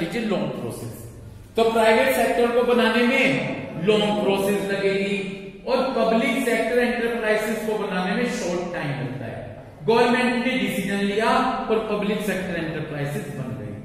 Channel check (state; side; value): identical; both; correlation 1.00